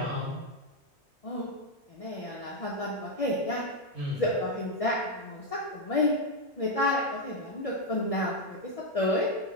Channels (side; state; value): both; normal; correlation 0.02